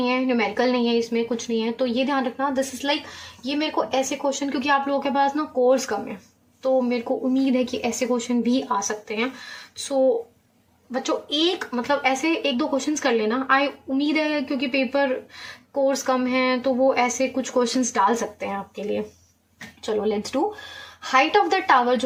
है, न्यूमेरिकल नहीं है, इसमें कुछ नहीं है, तो ये ध्यान रखना, दिस इज लाइक, ये मेरे को ऐसे क्वेश्चन, क्योंकि आप लोगों के पास ना कोर्स कम है, तो मेरे को उम्मीद है कि ऐसे क्वेश्चन भी आ सकते हैं। सो बच्चों, एक मतलब ऐसे एक दो क्वेश्चंस कर लेना, आई उम्मीद है, क्योंकि पेपर कोर्स कम है तो वो ऐसे कुछ क्वेश्चंस डाल सकते हैं आपके लिए। चलो let's do. Height of the tower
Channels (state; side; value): identical; both; correlation 1.00